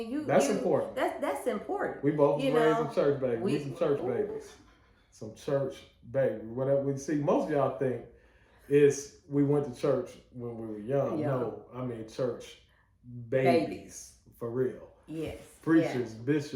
That's important. That's important. We both was raised in church babies. We some church babies. Some church baby. Whatever we see, most of y'all think is we went to church when we were young. No, I mean church babies. For real. Yes. Preachers,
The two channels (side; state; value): both; identical; correlation 1.00